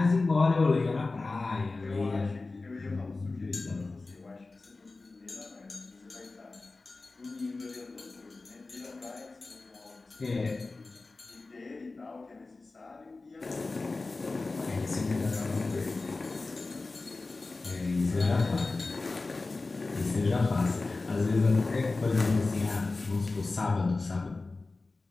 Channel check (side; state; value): right; quieter; 3.5 dB